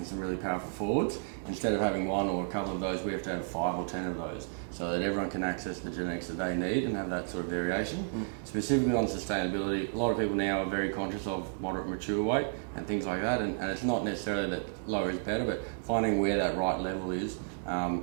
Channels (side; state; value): left; silent; digital silence